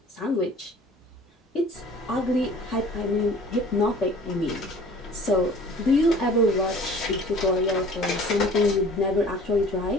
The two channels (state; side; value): normal; both; correlation 0.48